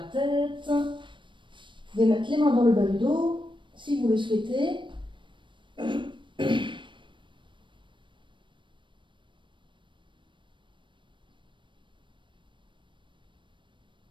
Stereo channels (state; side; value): late; left; 0.23 ms